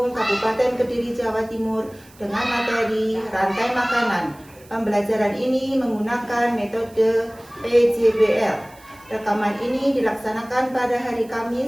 Kabupaten Kediri, Jawa Timur dengan materi rantai makanan. Pembelajaran ini menggunakan metode PJBL. Rekaman ini dilaksanakan pada hari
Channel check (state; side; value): noise; right; hiss, 26 dB below the sound